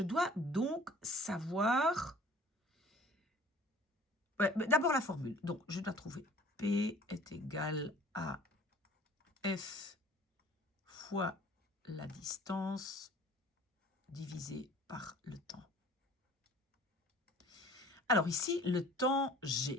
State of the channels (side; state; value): both; normal; correlation 0.49